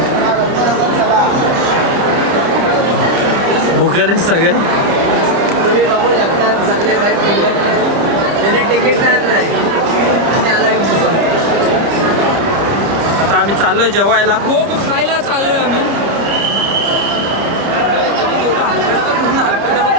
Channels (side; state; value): left; late; 30 ms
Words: भुकेले सगळे. तुम्ही बघू शकता सगळे बाईक त्याने तिकीट नाही आणि आला. आता आम्ही चाललोय जेवायला.